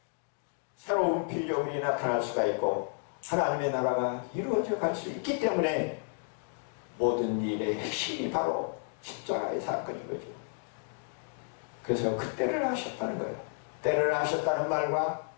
새로운 필요물이 나타날 수가 있고 하나님의 나라가 이루어져 갈 수 있기 때문에 모든 일의 핵심이 바로 십자가의 사건인 거죠. 그래서 그 때를 하셨다는 거예요. 때를 하셨다는 말과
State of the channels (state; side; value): silent; right; 57 dB below the other